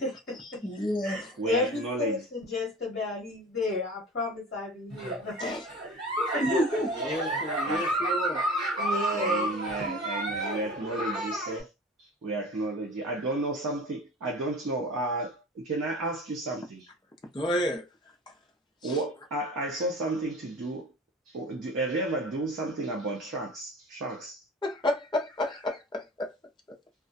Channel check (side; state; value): both; normal; correlation 0.38